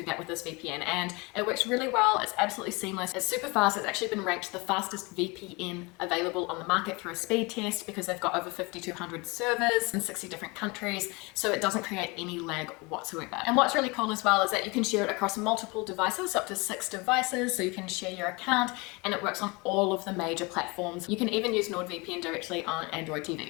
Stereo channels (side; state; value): right; quieter; 26.6 dB